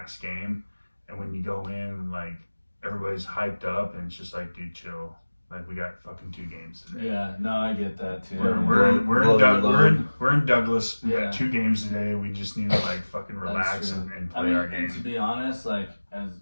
game, and when you go in like everybody's hyped up and it's just like dude chill. Like we got fucking 2 games today. Yeah, no, I get that too. We're in Douglas. We Yeah. got 2 games today. We just need to like fucking That's relax true. and I play mean, our and to game. be honest, like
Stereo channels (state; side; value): inverted; both; correlation -1.00